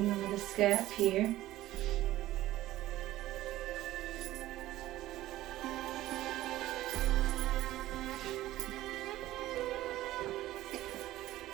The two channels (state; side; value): quieter; left; 15.4 dB